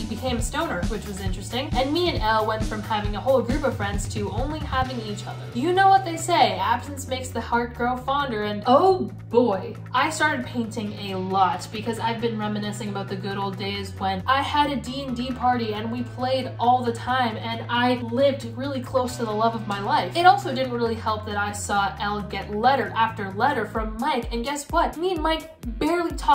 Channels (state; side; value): identical; both; correlation 1.00